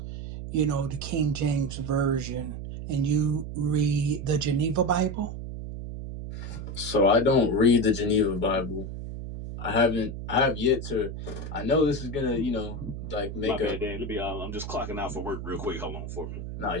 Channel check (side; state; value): right; noise; hum, 7 dB below the sound